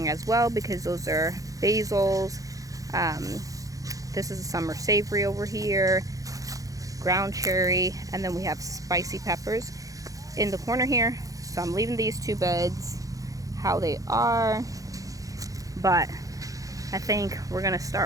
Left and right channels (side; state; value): left; late; 0.17 ms